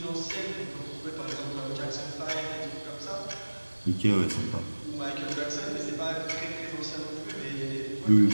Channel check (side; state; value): both; inverted; correlation -1.00